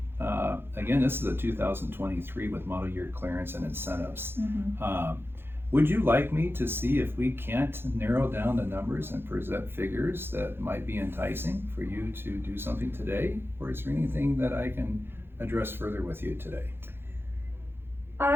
again, this is a 2023 with model year clearance and incentives. Would you like me to see if we can't narrow down the numbers and present figures that might be enticing for you to do something today? Or is there anything that I can address further with you today?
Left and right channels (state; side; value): late; left; 0.11 ms